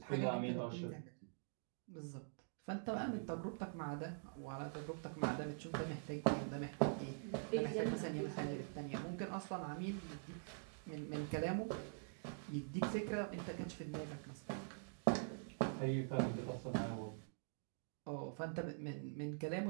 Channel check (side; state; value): left; silent; digital silence